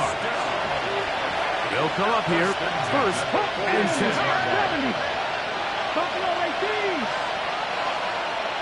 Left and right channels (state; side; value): identical; both; correlation 1.00